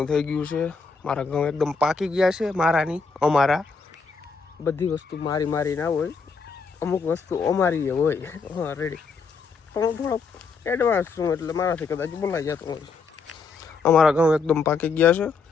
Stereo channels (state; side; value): quieter; right; 4.8 dB